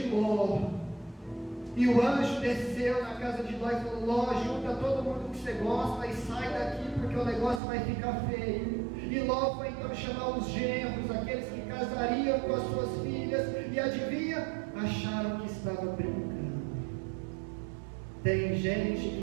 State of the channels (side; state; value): left; drops out; at 7.6 s